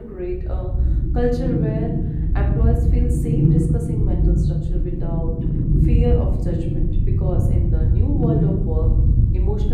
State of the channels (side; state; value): both; identical; correlation 1.00